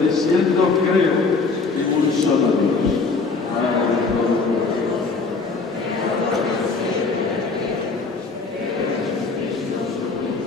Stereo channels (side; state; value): right; quieter; 4.2 dB